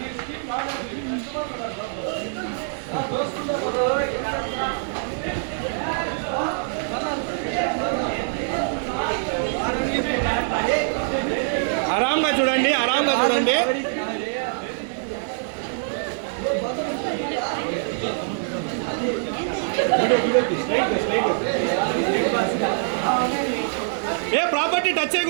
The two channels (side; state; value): left; silent; digital silence